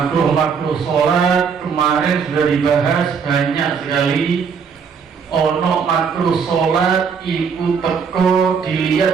sholat kemarin sudah dibahas banyak sekali. Ono makruh sholat iku teko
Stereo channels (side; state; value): left; quieter; 6.3 dB